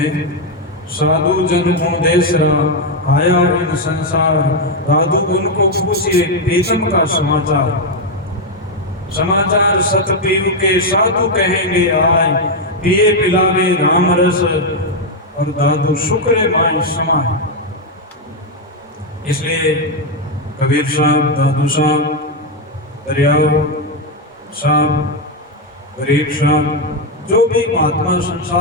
साधु जन को देसरा आया इन संसार, दादू उनको पूछिए प्रीतम का समाचार, समाचार सत पीव के साधु कहेंगे आए, पिए पिलावे राम रस और दादू शुक्र माई समाए। इसलिए कबीर साहब, दादू साहब, दरियाव साहब, गरीब साहब, जो भी महात्मा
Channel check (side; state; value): both; normal; correlation 0.03